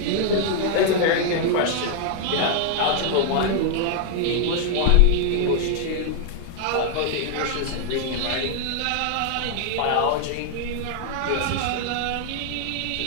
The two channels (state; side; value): different; both; correlation 0.00